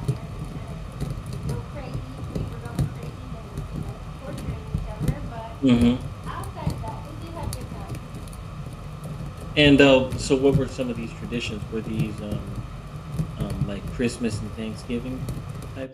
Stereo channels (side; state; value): both; identical; correlation 1.00